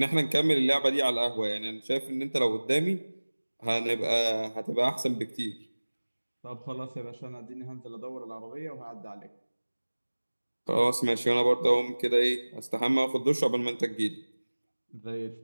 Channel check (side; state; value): both; inverted; correlation -1.00